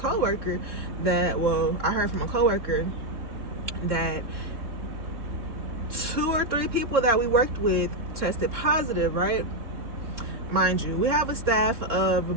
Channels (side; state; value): left; late; 3.7 ms